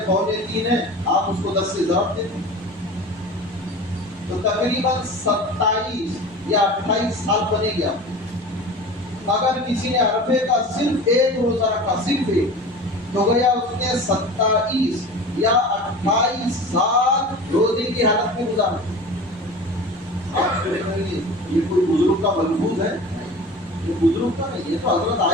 3.25 ہے، آپ اس کو 10 سے ضرب دیتے تو تقریباً 27 یا 28 سال بنے گیا. اگر کسی نے عرفے کا صرف 1 روزہ رکھا، صرف 1، تو گیا اس نے 27 یا 28 سال روزے کی حالت میں گزارا. آپ یہ کوئی بزرگ کا ملفوظ ہے؟ یہ بزرگ کا نہیں، یہ تو حضرت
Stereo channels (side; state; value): right; noise; hum, 29 dB below the sound